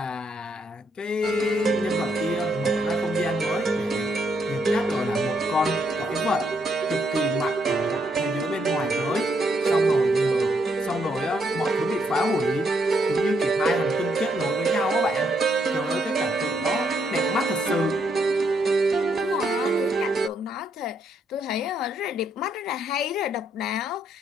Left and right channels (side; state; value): both; normal; correlation 0.75